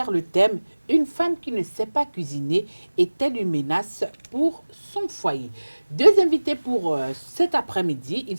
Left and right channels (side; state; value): both; inverted; correlation -1.00